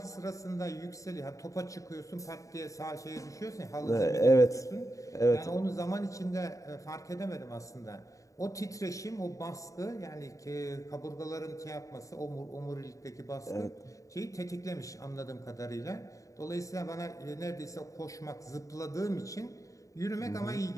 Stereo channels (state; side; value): late; right; 0.16 ms